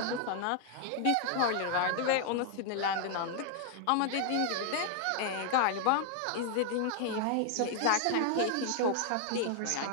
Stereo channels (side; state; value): both; different; correlation 0.00